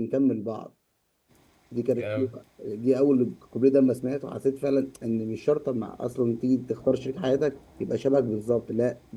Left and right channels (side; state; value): both; identical; correlation 1.00